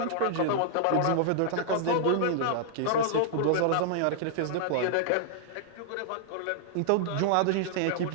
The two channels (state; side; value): different; both; correlation -0.01